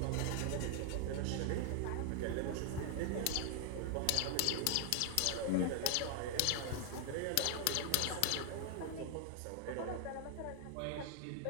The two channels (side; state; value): both; different; correlation 0.00